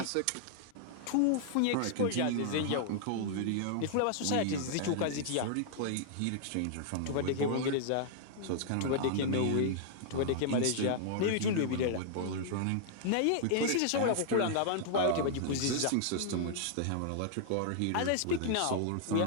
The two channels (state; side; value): different; both; correlation -0.01